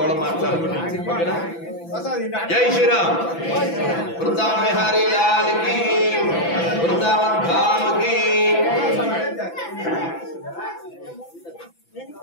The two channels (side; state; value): right; late; 6.0 ms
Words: కూడా మాట్లాడుకోండి. జై శ్రీరామ్. వృందావన్ విహారీ లాల్ కి, వృందావన్ ధామ్ కి,